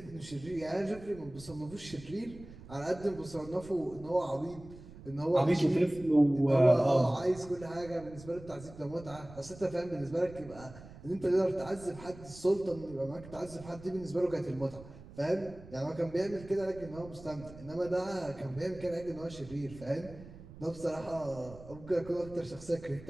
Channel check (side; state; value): right; noise; rumble, 17 dB below the sound